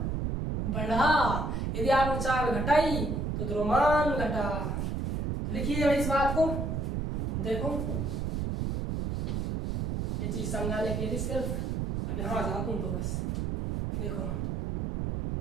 बढ़ा, यदि आपने चाल घटाई तो द्रव्यमान घटा। तो लिखिए भाई इस बात को, देखो ये चीज समझाने के लिए सिर्फ यहाँ जाता हूं तो बस देखो,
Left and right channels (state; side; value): noise; right; rumble, 1 dB below the sound